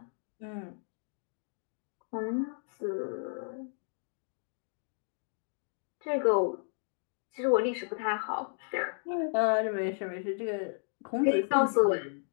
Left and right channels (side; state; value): right; silent; digital silence